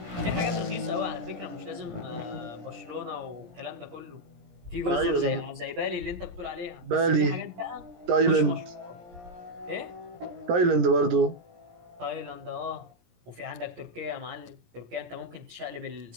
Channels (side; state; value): left; late; 17 ms